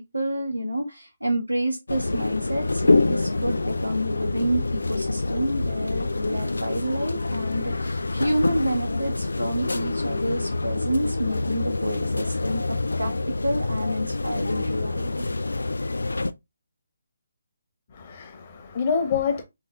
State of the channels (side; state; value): both; inverted; correlation -0.92